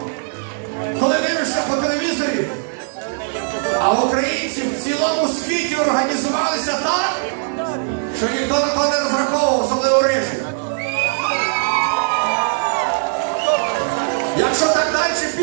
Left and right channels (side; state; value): left; silent; 60 dB below the other